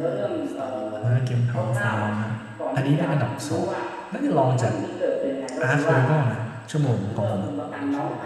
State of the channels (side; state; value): both; identical; correlation 1.00